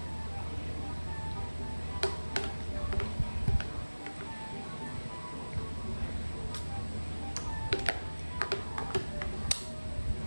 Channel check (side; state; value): both; inverted; correlation -1.00